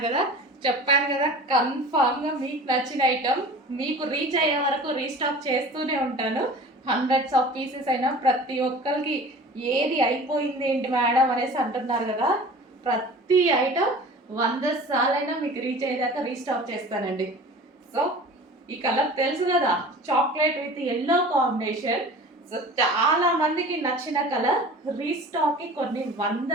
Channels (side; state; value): both; normal; correlation 0.40